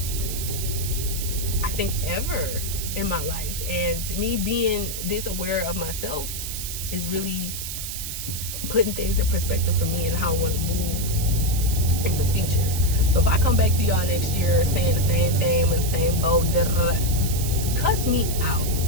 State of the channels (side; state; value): right; noise; hiss, 6 dB below the sound